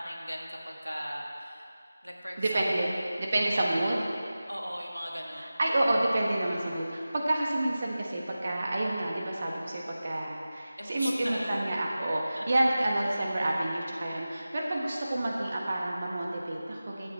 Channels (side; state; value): both; inverted; correlation -0.96